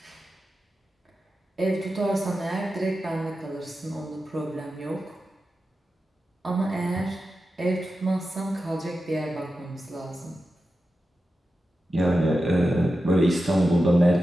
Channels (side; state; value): both; normal; correlation 0.91